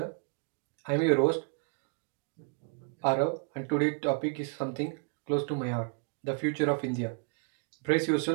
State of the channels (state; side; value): quieter; left; 37.9 dB